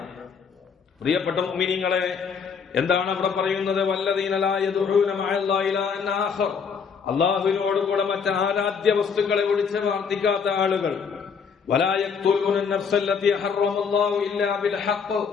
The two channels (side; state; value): right; quieter; 6.2 dB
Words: പ്രിയപ്പെട്ട മുഅ്മിനീങ്ങളെ, എന്താണ് അവിടെ പറയുന്നത്? വല്ലദീന ലാ യദ്ഊന മഅല്ലാഹി ഇലാഹൻ ആഖർ, അല്ലാഹുവിനോടുകൂടെ മറ്റ് ആരാധ്യ വസ്തുക്കളെ വിളിച്ച് പ്രാർത്ഥിക്കാത്ത ആളുകൾ. വലാ യഖ്തുലൂന നഫ്സല്ലതി ഹറമല്ലാഹു ഇല്ലാ ബിൽ ഹഖ്,